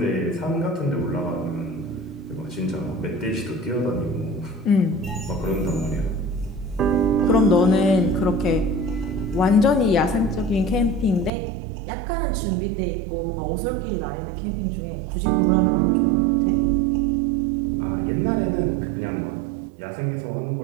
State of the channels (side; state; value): left; drops out; at 11.3 s